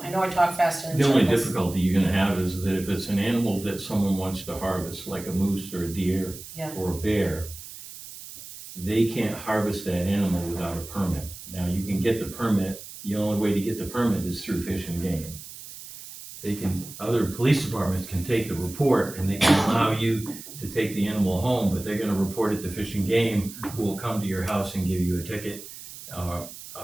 I know I talk fast and in The only circles. difficulty you're gonna have is that if it's an animal that someone wants to harvest, like a moose or a deer Yeah. or a bear, they can't harvest that animal without a permit. Now, you can get the permit, the only way to get the permit is through Fish and Game. Other police departments can take the report and they can allow you to take the animal home, but they're gonna report it to Fish and Game, who will come to your house and give you a ticket, a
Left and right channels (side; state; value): right; noise; hiss, 14 dB below the sound